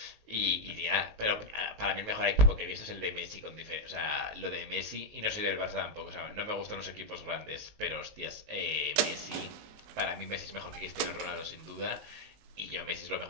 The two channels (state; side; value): late; left; 19 ms